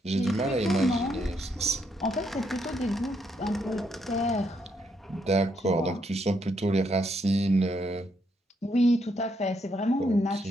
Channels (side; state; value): both; normal; correlation 0.76